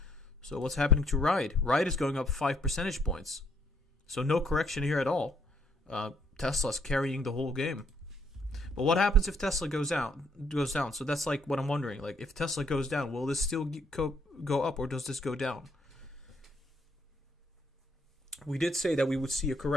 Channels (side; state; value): both; normal; correlation 0.68